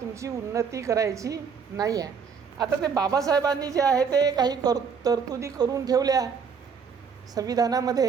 उन्नती करायची नाही आहे. आता ते बाबासाहेबांनी जे आहे ते काही तरतुदी करून ठेवल्या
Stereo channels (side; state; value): left; quieter; 6.2 dB